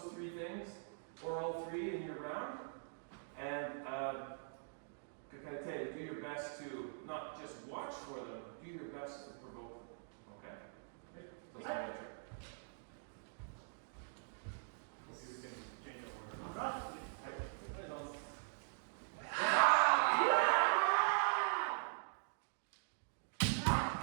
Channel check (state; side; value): silent; left; digital silence